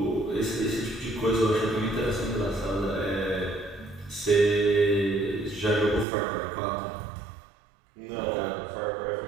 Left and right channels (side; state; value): left; drops out; at 6.1 s